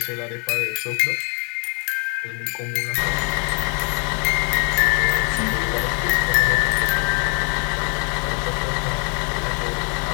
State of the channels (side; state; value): right; quieter; 37.5 dB